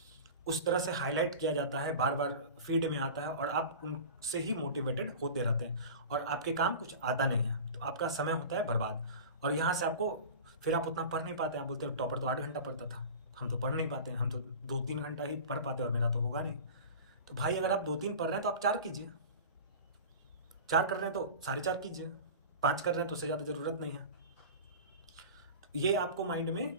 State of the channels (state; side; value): inverted; both; correlation -0.34